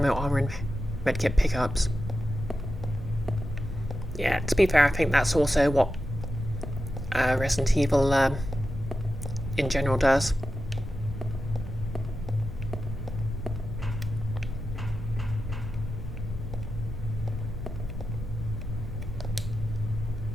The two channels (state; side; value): noise; left; rumble, 11 dB below the sound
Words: armour and medkit pickups. Yeah, to be fair, I think that's also what Resident Evil in general does.